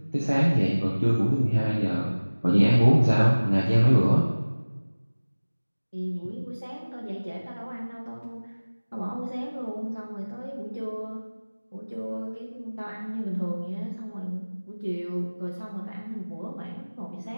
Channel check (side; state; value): both; inverted; correlation -1.00